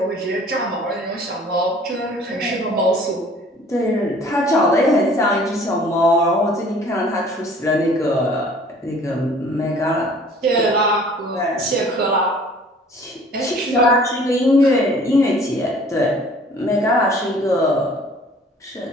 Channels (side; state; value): both; normal; correlation 0.52